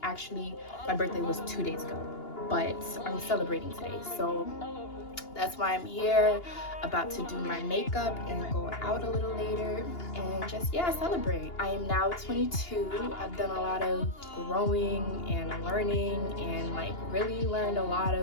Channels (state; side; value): late; right; 2.8 ms